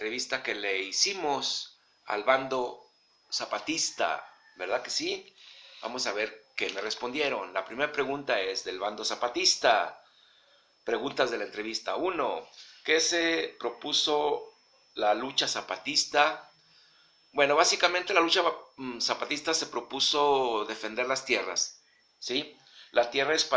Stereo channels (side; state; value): both; identical; correlation 1.00